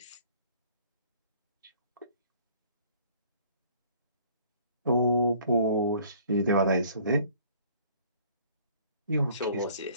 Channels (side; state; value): both; inverted; correlation -0.56